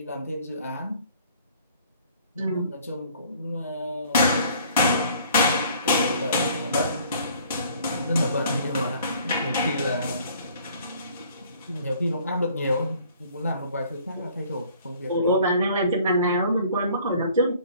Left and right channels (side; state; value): both; inverted; correlation -0.56